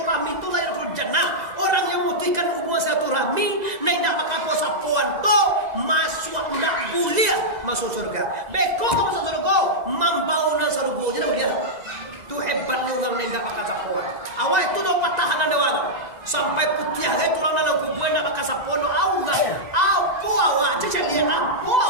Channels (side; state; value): left; late; 2.0 ms